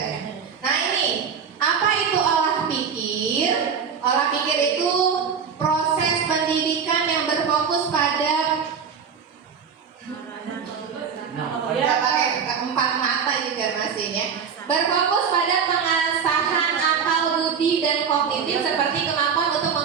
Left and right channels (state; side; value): quieter; left; 6.6 dB